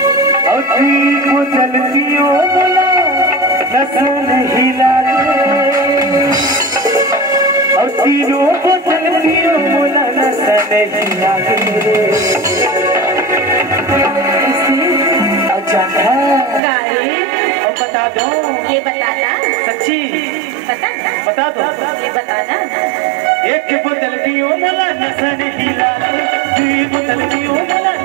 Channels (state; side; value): drops out; left; at 16.6 s